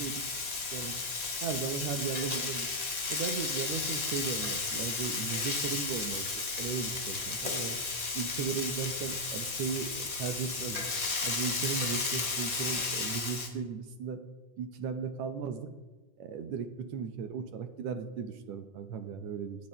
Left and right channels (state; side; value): late; left; 11 ms